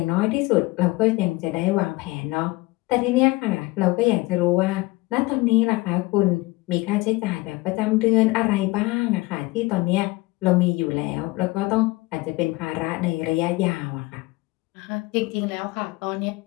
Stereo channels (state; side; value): quieter; right; 21.9 dB